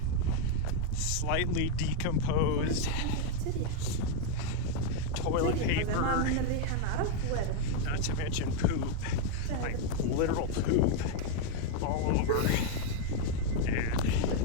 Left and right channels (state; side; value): different; both; correlation 0.01